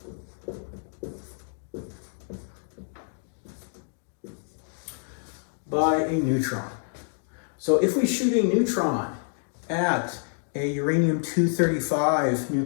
By a neutron. So if we shoot a neutron at a uranium-235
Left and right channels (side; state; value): right; silent; 60 dB below the other